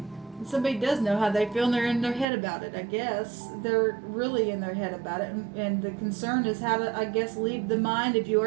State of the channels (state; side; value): drops out; left; at 2.2 s